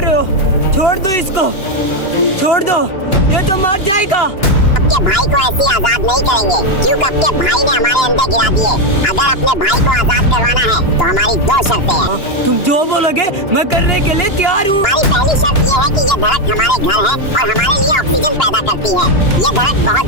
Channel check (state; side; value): late; right; 2.9 ms